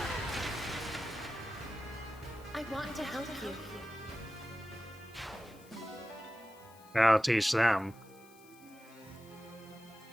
I want to help you. I'll teach them.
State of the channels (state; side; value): noise; left; hiss, 25 dB below the sound